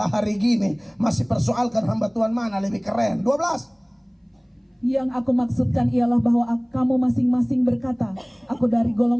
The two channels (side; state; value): both; identical; correlation 1.00